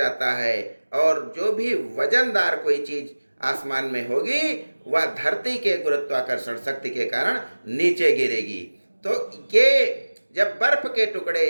है, और जो भी वजनदार कोई चीज आसमान में होगी वह धरती के गुरुत्वाकर्षण शक्ति के कारण नीचे गिरेगी। तो ये जब बर्फ के टुकड़े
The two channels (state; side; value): inverted; both; correlation -1.00